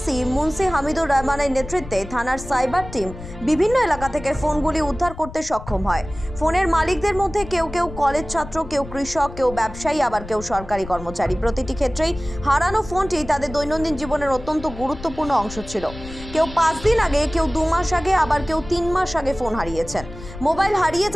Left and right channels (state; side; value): noise; left; rumble, 13 dB below the sound